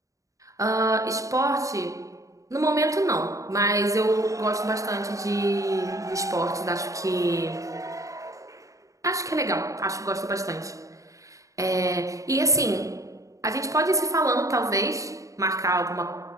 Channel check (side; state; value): left; late; 0.16 ms